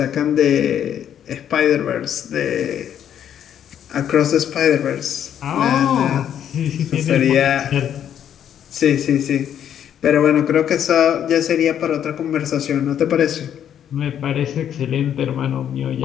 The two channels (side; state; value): right; quieter; 9.6 dB